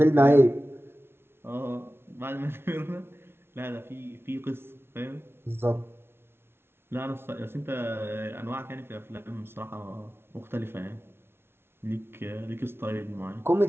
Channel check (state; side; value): late; left; 0.12 ms